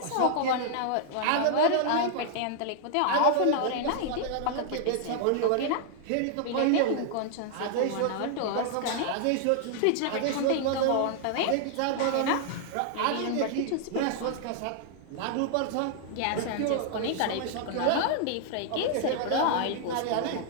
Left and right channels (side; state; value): both; different; correlation -0.01